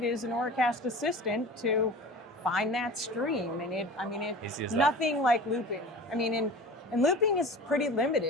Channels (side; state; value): both; normal; correlation 0.37